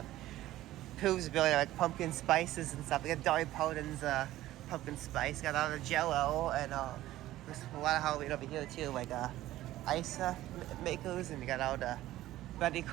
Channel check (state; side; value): quieter; left; 15.1 dB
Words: Pillsbury, like pumpkin spices and stuff. We got Dolly Parton's pumpkin spice. Got all the Jello and there's a lot of Halloween over here too, like ice makers, and you got all the Betty